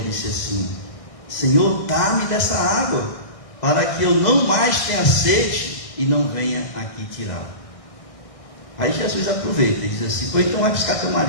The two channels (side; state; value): right; late; 1.6 ms